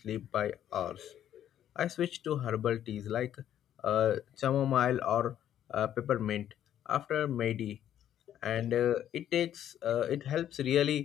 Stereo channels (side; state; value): right; quieter; 10.8 dB